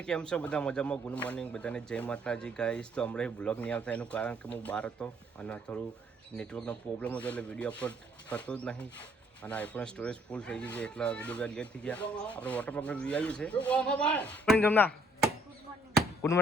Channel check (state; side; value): normal; both; correlation 0.66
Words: કેમ છો બધા? મજામાં? ગુડ મોર્નિંગ બધાને, જય માતાજી ગાઈસ. તો હમણાં બ્લોગ નહીં આવતા એનું કારણ કે હું બહાર હતો અને થોડું નેટવર્કનો પ્રોબ્લેમ હતો એટલે વિડીયો અપલોડ થતો જ નહીં અને આઈફોન સ્ટોરેજ ફૂલ થઈ ગઈ છે એટલે વિડીયો લેટ થઈ ગયા. આપણે વોટર પાર્કનો વ્યૂ આવ્યું છે. જમના ગુડ